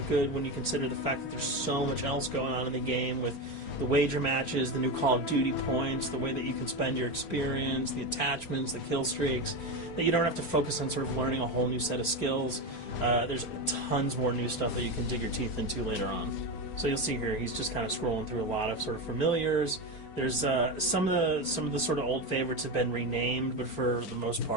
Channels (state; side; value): late; right; 4.4 ms